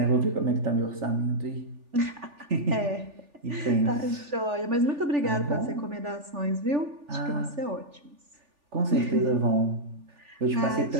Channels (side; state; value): left; late; 3.4 ms